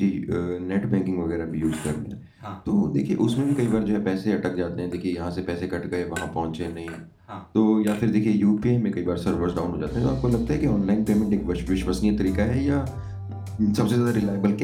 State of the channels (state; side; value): identical; both; correlation 1.00